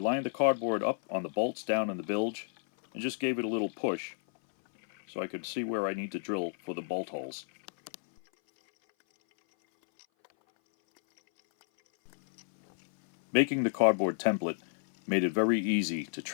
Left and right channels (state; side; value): silent; right; 57 dB below the other